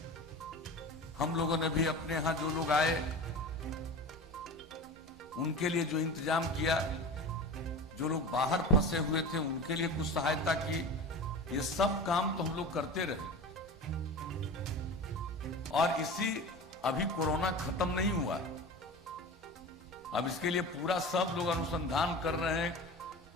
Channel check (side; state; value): both; normal; correlation 0.32